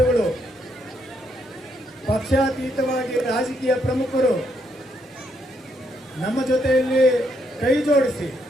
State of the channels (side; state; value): both; normal; correlation 0.75